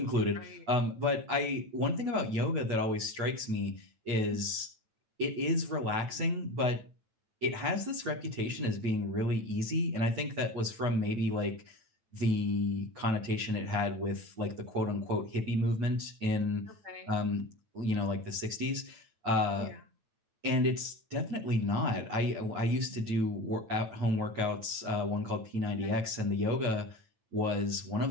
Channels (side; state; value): left; late; 9.1 ms